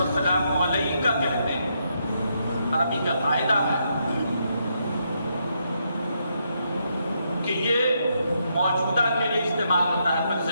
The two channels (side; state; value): both; inverted; correlation -0.78